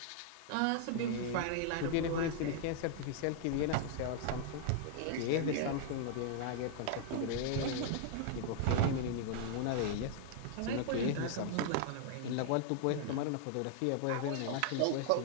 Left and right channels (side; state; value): both; different; correlation -0.01